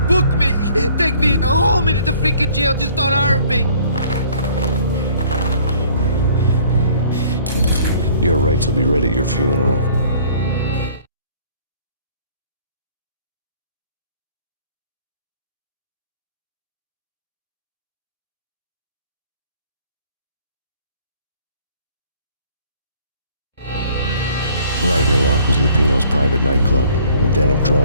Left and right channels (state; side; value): inverted; both; correlation -0.56